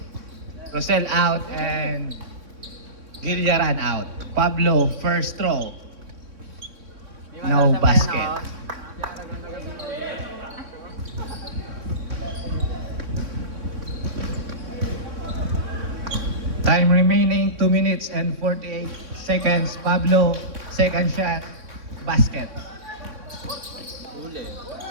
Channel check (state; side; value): late; left; 3.6 ms